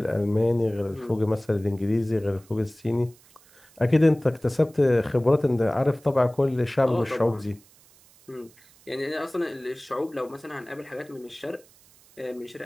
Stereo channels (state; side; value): noise; right; hiss, 28 dB below the sound